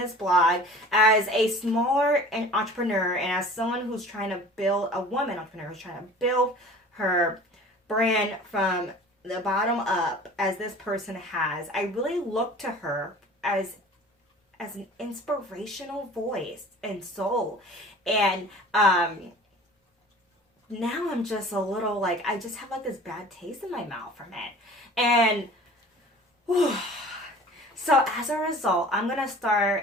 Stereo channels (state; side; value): normal; both; correlation 0.43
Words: blog as a smaller entrepreneur and as someone who's trying to build, a woman entrepreneur who's trying to build her brand from the bottom up as this person has. I really look to her as an inspirational voice and soul. And now I'm just a little like, I just have like this bad taste in my mouth from it. And so as a result, I'm going to